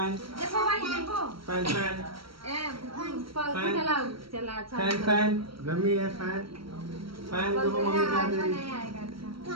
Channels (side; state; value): left; late; 0.74 ms